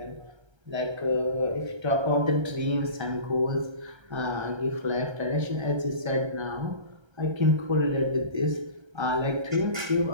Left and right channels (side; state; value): left; late; 1.3 ms